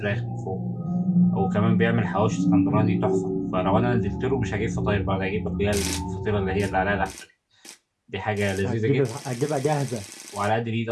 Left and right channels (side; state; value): both; identical; correlation 1.00